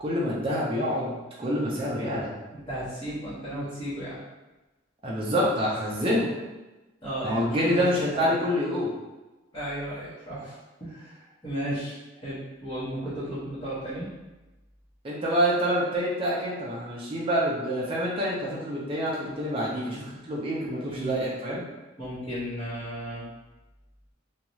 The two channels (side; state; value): both; normal; correlation 0.33